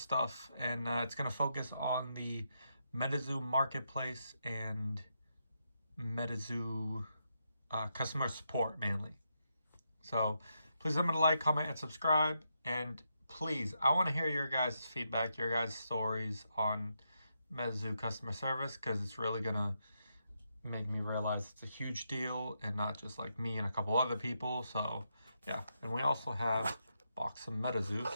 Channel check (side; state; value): both; inverted; correlation -0.82